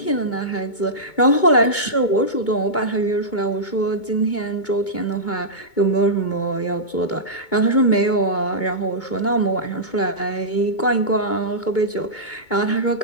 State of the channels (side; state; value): right; late; 2.2 ms